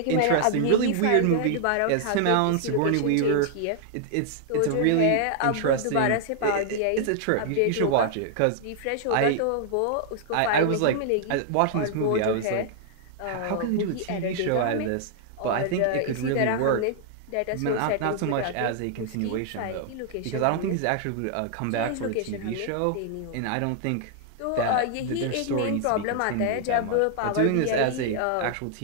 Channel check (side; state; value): both; different; correlation -0.01